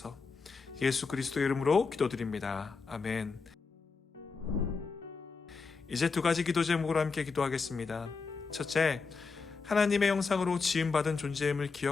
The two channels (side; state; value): right; quieter; 4.8 dB